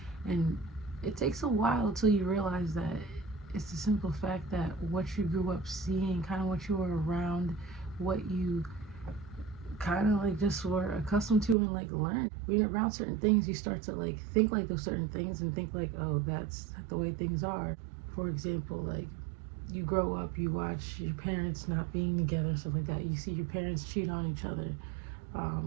And it takes a while till you realize that it's the simple fact that what you grew up seeing, kind of what you were around, what you kind of like just were accustomed to and like learned. When you're around certain things, you start to like think like those certain things and think like, oh, that's the way things are. For example, like you grow up, you watch your parents not being together, stuff like that. You see your parents cheat on each other.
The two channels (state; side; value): drops out; left; at 11.6 s